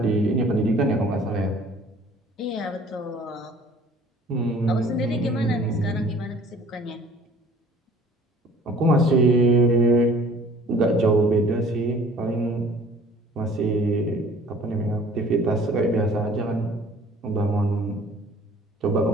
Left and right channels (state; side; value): normal; both; correlation 0.51